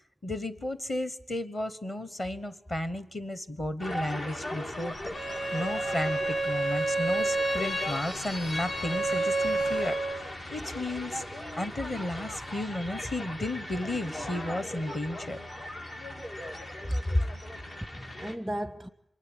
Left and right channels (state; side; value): normal; both; correlation 0.89